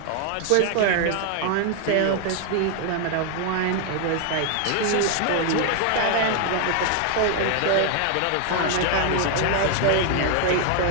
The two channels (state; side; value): different; both; correlation 0.00